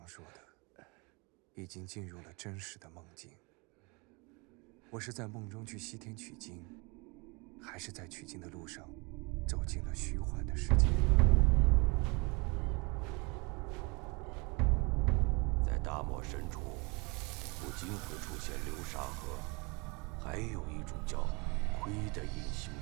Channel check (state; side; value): quieter; left; 29.0 dB